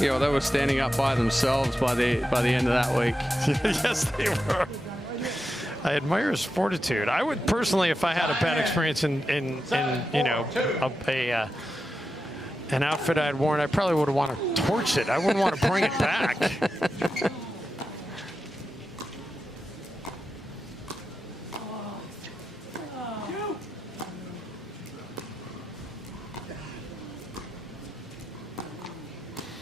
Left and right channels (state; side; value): normal; both; correlation 0.89